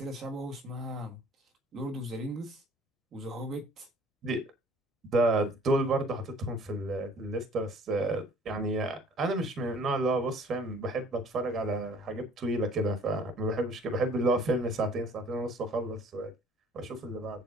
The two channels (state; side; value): normal; both; correlation 0.54